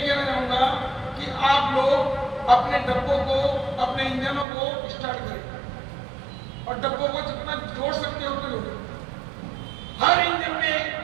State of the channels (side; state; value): left; drops out; at 4.5 s